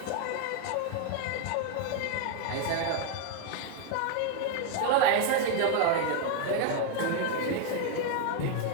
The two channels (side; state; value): both; different; correlation 0.01